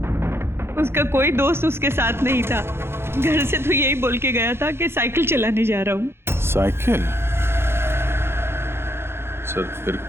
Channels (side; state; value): left; late; 0.12 ms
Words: उसका कोई दोस्त उसके साथ नहीं था। घर से तो यही बोल के गया था कि साइकिल चलाने जा रहा हूँ। साइकिल? सर, फिर